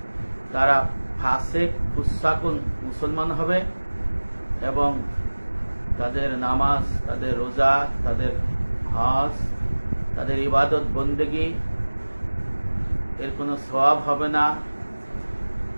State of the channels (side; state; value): both; inverted; correlation -1.00